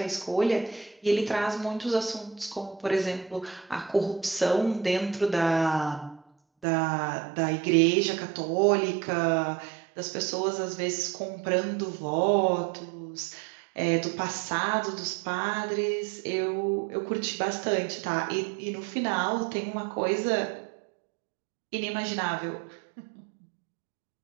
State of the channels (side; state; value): left; drops out; at 6.7 s